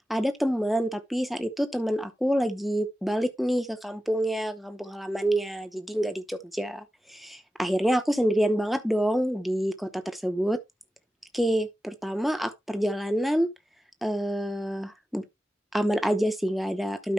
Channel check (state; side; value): normal; both; correlation 0.93